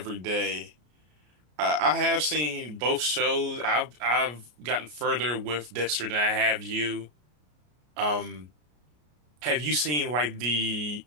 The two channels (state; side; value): late; left; 33 ms